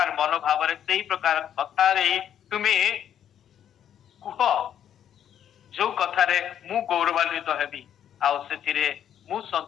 ମନୋଭାବରେ, ସେଇ ପ୍ରକାର କଥାରେ ତୁମେ କୁହ ଯୋଉ କଥାରେ ମୁଁ ଗୌରବାନ୍ୱିତ ହେବି, ଆଉ ସେଥିରେ ମୁଁ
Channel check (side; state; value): right; quieter; 9.8 dB